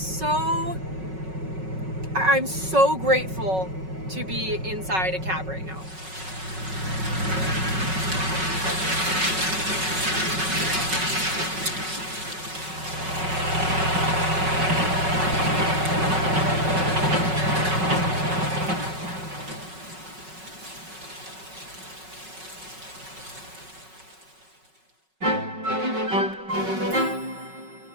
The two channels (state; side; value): late; left; 5.4 ms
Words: I'm so grateful to be inside a cab right now.